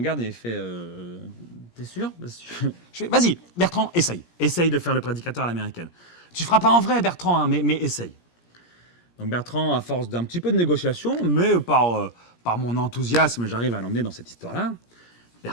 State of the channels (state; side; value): late; right; 17 ms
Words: et il fait T'es sûr? Je fais Vas-y, Bertrand, essaye. Essaye de faire le prédicateur à l'américaine. Tu ne feras pas en vrai, Bertrand, hein, mais essaye. Donc Bertrand, à force d'un petit peu de négociation, mais par mon enthousiasme, j'arrive à l'emmener dans cette histoire-là.